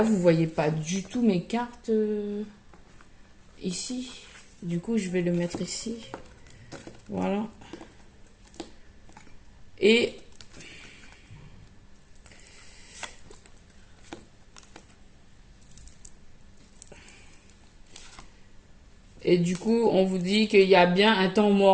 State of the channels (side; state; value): both; identical; correlation 1.00